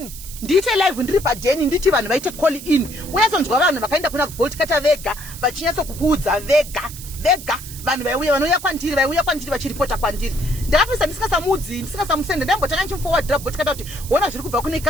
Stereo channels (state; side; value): noise; right; hiss, 13 dB below the sound